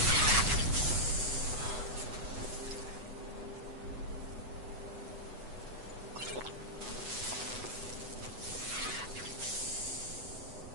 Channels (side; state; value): left; late; 8.1 ms